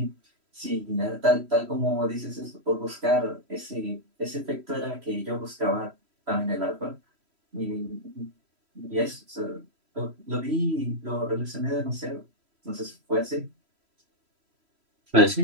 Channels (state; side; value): late; left; 3.0 ms